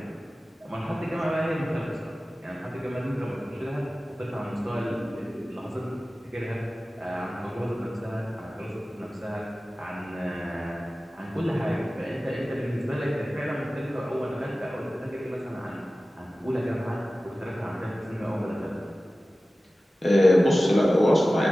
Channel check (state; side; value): normal; both; correlation 0.96